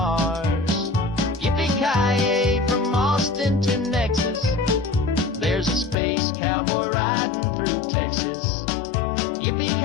Yippee-ki-yay from Austin to Nexus, there's a space cowboy riding through Texas.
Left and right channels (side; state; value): right; drops out; at 6.0 s